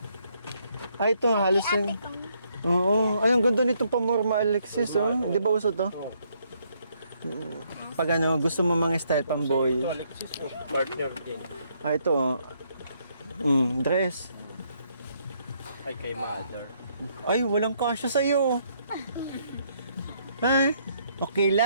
Ay, ito, halos yung... Oo. Ay, ang ganda nitong pamorma, Alexis, oh. Di ba uso to? Oh. Pag ano, gusto mo mga style pamboy. Ito, Alexis, oh, partner din. Ah, ito, oh. Dress. Ay, kay mother. Ay, walang kasya sa'yo. Ay, okay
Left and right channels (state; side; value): inverted; both; correlation -0.71